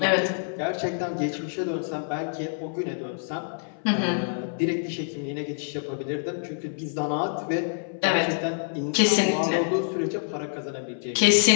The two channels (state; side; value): silent; right; 61 dB below the other